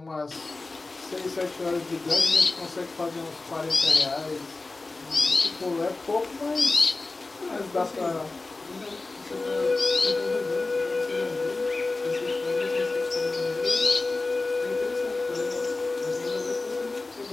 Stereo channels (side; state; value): right; quieter; 3.4 dB